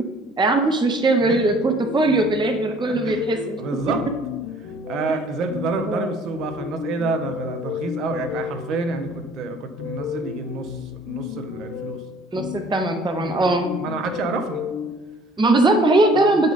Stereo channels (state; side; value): normal; both; correlation 0.55